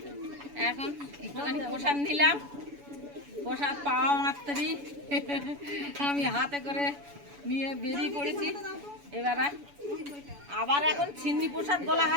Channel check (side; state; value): left; late; 7.0 ms